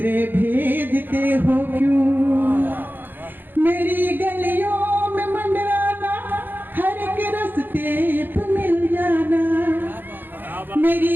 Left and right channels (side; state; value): left; late; 0.093 ms